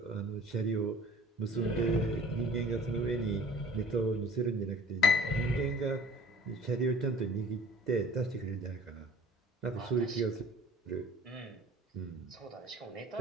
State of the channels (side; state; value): both; normal; correlation 0.48